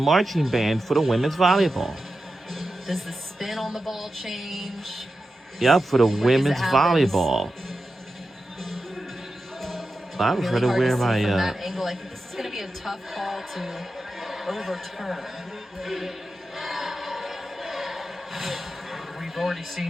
band for the women's volleyball. Does the spin on the ball change? Yep, for the women's volleyball. I was ready to wear my. From that angle, I think this is going to be a tough call to overturn. We've already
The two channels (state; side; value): normal; both; correlation 0.91